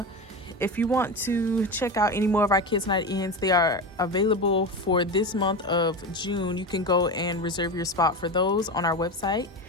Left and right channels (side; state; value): both; normal; correlation 0.22